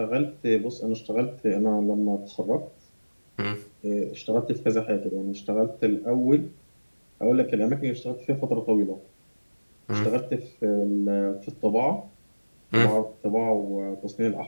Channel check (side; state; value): both; inverted; correlation -1.00